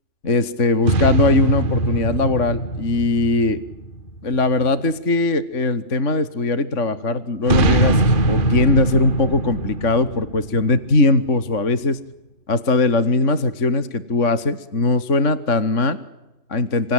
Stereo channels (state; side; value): late; right; 3.5 ms